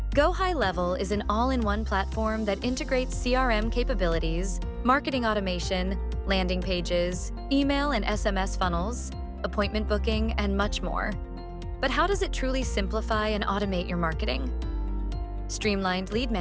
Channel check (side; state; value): both; identical; correlation 1.00